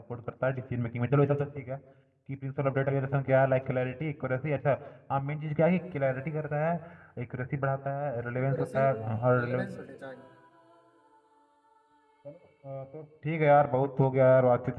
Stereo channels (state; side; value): identical; both; correlation 1.00